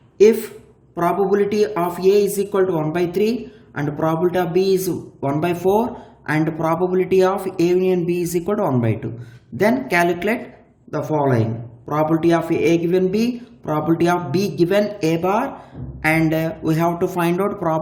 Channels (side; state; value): both; identical; correlation 1.00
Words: If probability of A is equal to 1 by 3 and probability of B is 1 by 4 and probability of A union B is equal to 1 by 2, then calculate the following. Probability of A given B, probability of B given A bar, and we have to find out